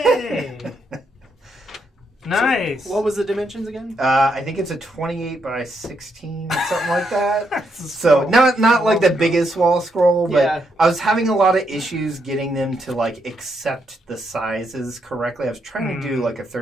Nice! What was the dimensions again? I think it's a 28 by 16, something like that. That's a So small- not like the biggest wall scroll, but Yeah. I was having a lot of issues getting them to like accept the sizes correctly. I was trying to do like a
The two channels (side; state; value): both; normal; correlation 0.78